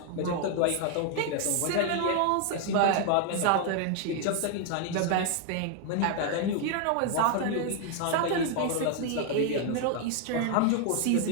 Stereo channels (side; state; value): both; different; correlation 0.00